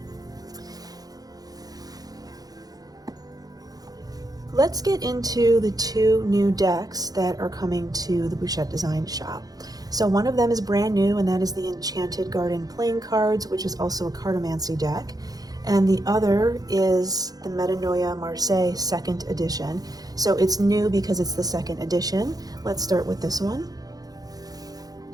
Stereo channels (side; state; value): left; late; 0.18 ms